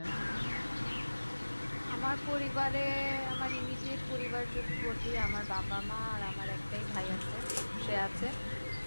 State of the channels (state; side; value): inverted; both; correlation -1.00